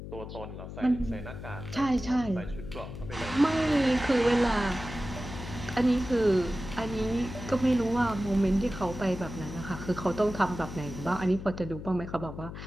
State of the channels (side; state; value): left; noise; hum, 10 dB below the sound